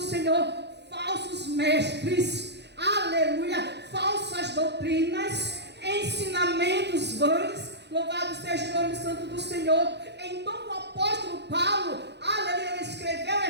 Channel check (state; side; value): late; left; 0.50 ms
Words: mestres, aleluia, falsas doutrinas, ensinamentos vãos. Louvado seja o nome santo do Senhor. Então o apóstolo Paulo, aleluia, escreveu